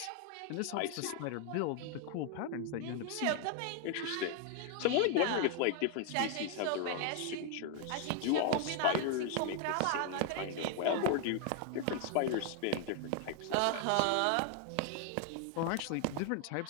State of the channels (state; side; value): different; both; correlation 0.00